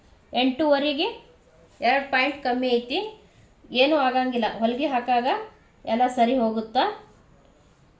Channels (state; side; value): identical; both; correlation 1.00